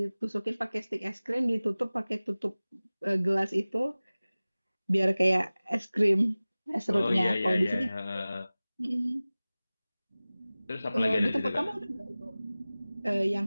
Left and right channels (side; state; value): both; inverted; correlation -0.98